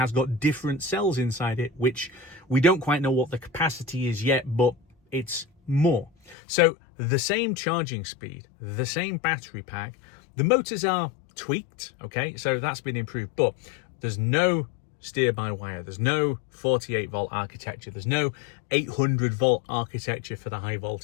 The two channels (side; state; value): right; drops out; at 6.4 s